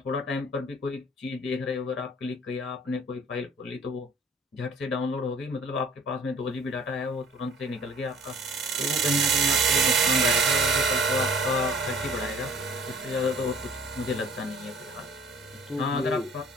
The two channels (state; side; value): normal; both; correlation 0.50